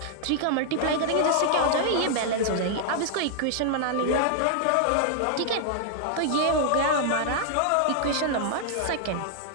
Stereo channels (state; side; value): different; both; correlation -0.01